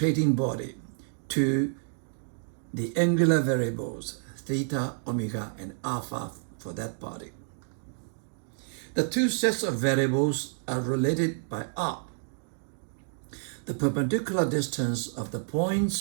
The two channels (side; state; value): left; silent; digital silence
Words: body to the angular variables theta, omega, and alpha for that body. The two sets of variables are related by r, the perpendicular distance of the